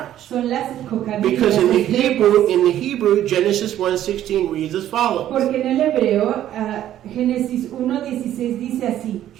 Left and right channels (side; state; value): left; quieter; 12.0 dB